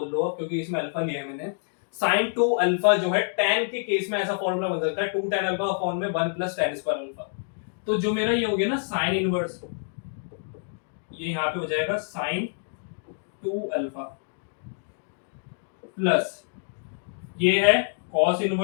लो क्योंकि इसमें अल्फा लिया है मैंने। sin 2 अल्फा जो है tan के केस में ऐसा फॉर्मूला बन सकता है, 2 tan अल्फा अपॉन में 1 + tan² अल्फा। तो जो मेरा ये हो गया ना sin इनवर्स, ये यहाँ पे हो जाएगा sin 2 अल्फा प्लस ये है cos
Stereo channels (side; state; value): right; silent; digital silence